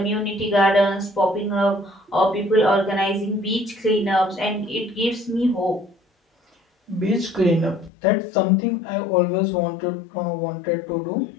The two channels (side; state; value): right; drops out; at 7.9 s